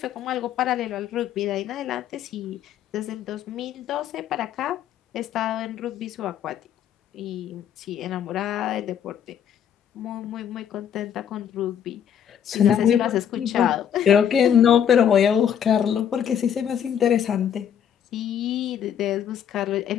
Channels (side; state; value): right; quieter; 9.0 dB